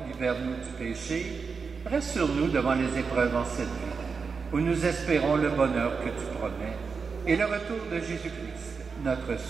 libère-nous du péché, rassure-nous devant les épreuves en cette vie, où nous espérons le bonheur que tu promets, et le retour de Jésus-Christ, notre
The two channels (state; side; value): quieter; left; 5.2 dB